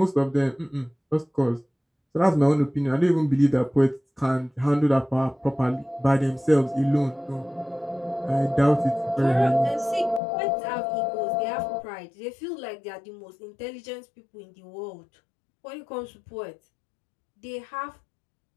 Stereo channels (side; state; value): right; drops out; at 10.2 s